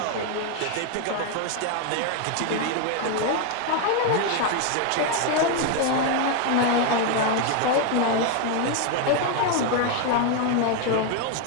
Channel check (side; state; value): both; different; correlation 0.01